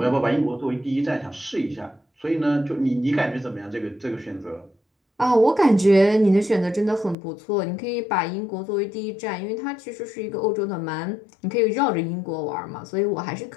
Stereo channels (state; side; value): drops out; right; at 7.2 s